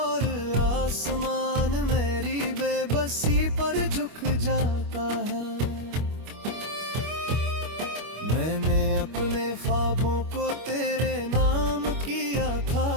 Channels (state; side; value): late; left; 25 ms